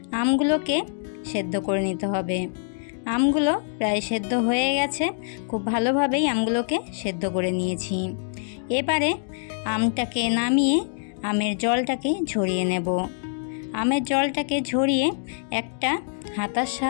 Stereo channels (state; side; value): silent; right; digital silence